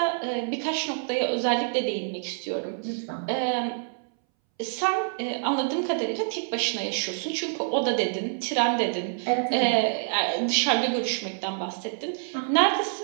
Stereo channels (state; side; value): silent; left; 60 dB below the other